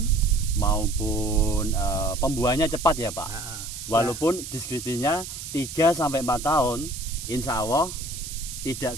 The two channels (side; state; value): right; noise; hiss, 9 dB below the sound